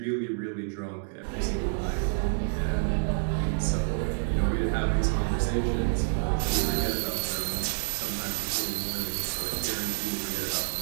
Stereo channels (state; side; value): silent; left; digital silence